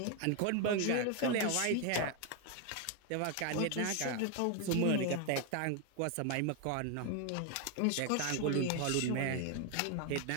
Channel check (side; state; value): both; different; correlation 0.01